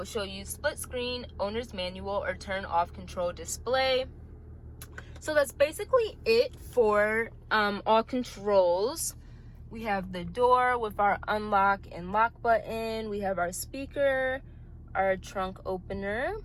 show you split screen, owner's manual, or turn off control display. So that's basically it for all controls. We have the door with our unlock and lock button. We have our speaker, our trunk opener,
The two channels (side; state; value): both; identical; correlation 1.00